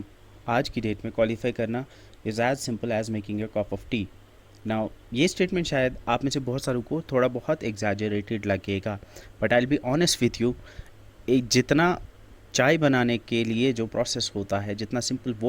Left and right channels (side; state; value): both; identical; correlation 1.00